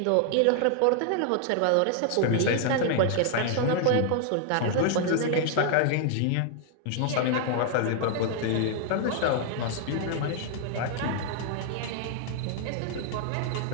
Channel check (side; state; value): both; different; correlation 0.00